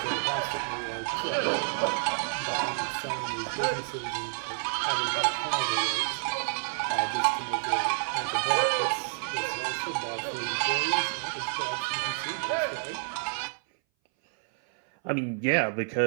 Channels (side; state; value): left; silent; 58 dB below the other